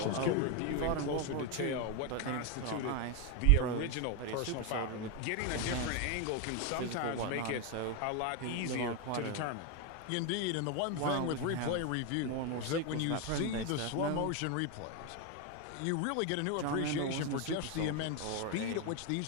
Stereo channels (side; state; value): both; different; correlation 0.02